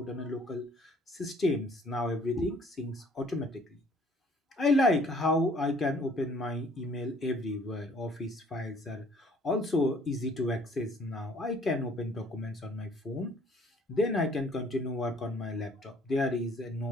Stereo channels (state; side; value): normal; both; correlation 0.58